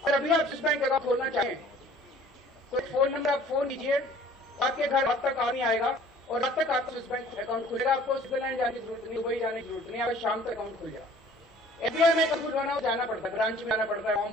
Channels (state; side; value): normal; both; correlation 0.52